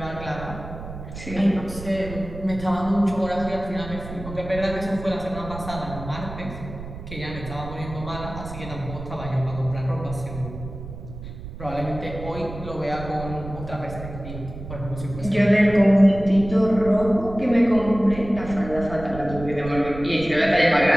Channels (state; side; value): noise; right; rumble, 11 dB below the sound